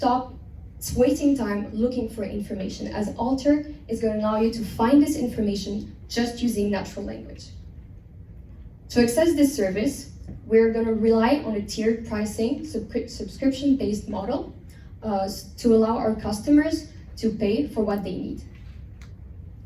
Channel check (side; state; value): both; identical; correlation 1.00